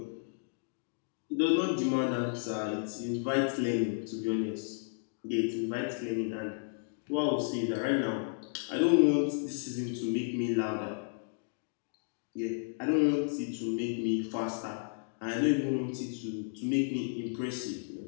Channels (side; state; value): right; silent; digital silence